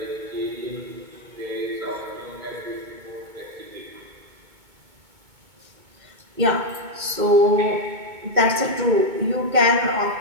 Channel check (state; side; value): late; left; 2.2 ms